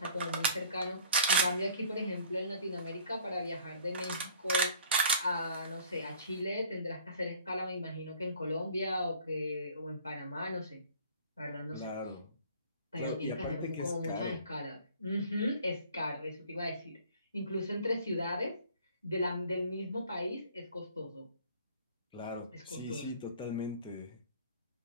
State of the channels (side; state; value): both; inverted; correlation -0.51